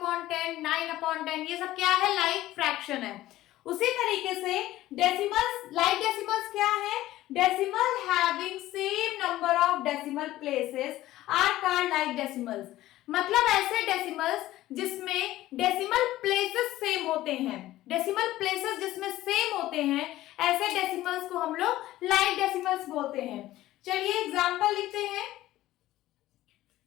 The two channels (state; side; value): quieter; right; 15.5 dB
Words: 9/10, ये सब क्या है? लाइक फ्रैक्शन है। उसी तरीके से डेसिमल्स, लाइक डेसिमल्स क्या है? Decimal having same number of decimal places are called like decimals. मतलब ऐसे डेसिमल्स जिसमें डेसिमल प्लेसेस सेम होते हैं, डेसिमल प्लेसेस जिसमें सेम होते हैं, ऐसे डेसिमल्स को हम लोग लाइक डेसिमल्स बोलते हैं। चलिए एग्जांपल लिखते हैं।